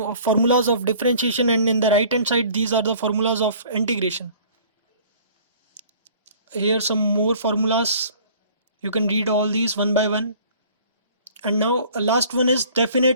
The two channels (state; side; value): inverted; both; correlation -0.51